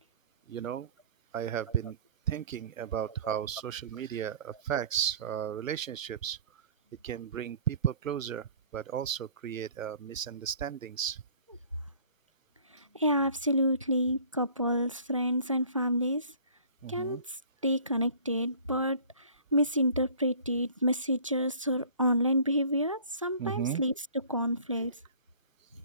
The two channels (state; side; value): inverted; both; correlation -0.49